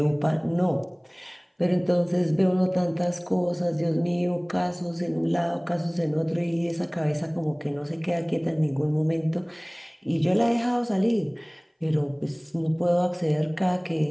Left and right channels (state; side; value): identical; both; correlation 1.00